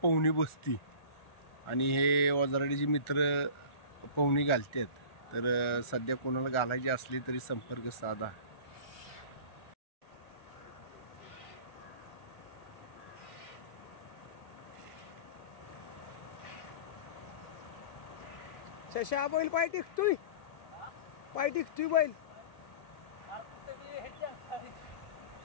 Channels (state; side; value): late; right; 1.4 ms